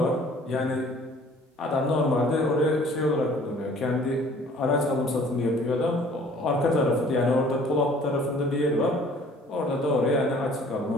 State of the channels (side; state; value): both; normal; correlation 0.53